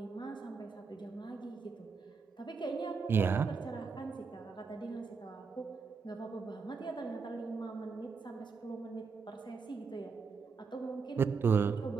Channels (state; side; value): quieter; left; 5.1 dB